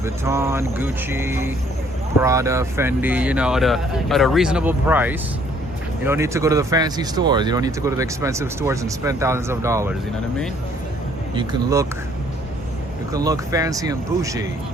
Gucci, Prada, Fendi, you know, at a reasonable price. You don't need to go to the fancy stores. You don't need to go to the expensive stores and spend thousands of dollars. You know what I mean? You can look fancy and bougie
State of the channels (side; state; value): both; normal; correlation 0.62